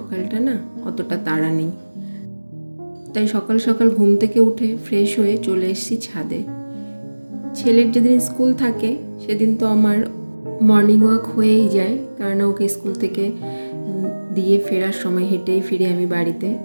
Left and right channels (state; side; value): inverted; both; correlation -1.00